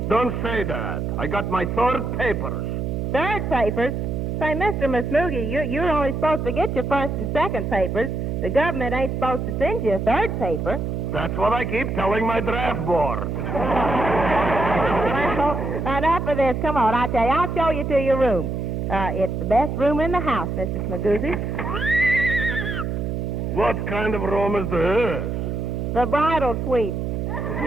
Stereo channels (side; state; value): right; noise; hum, 2 dB below the sound